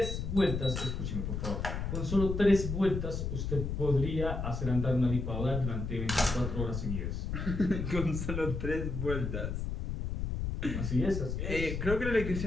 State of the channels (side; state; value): left; noise; rumble, 3 dB below the sound